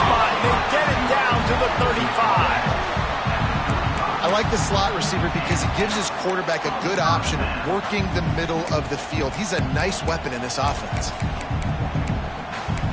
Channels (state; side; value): identical; both; correlation 1.00